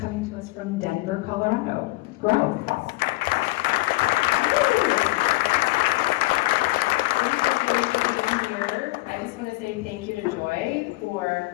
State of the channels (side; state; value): right; quieter; 22.2 dB